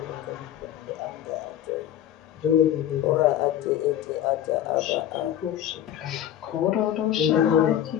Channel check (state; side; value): quieter; right; 11.1 dB